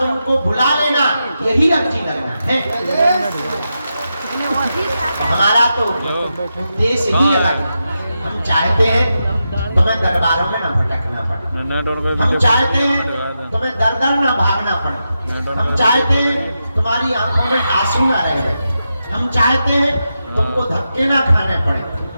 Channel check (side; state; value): both; inverted; correlation -0.88